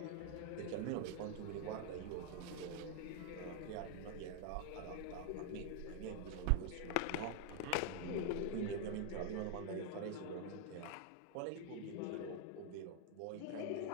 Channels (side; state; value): both; different; correlation 0.00